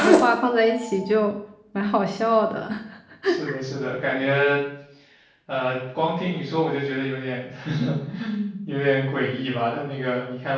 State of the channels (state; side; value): identical; both; correlation 1.00